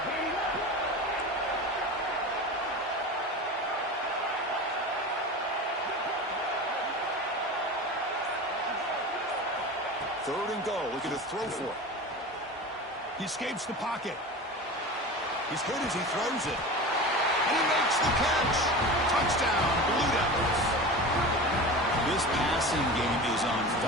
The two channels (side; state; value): both; normal; correlation 0.31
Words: Third and goal, looking to throw for it. He escapes the pocket. He's hit as he throws it. And he makes the catch. Touchdown, Blue Devils. This passing game is on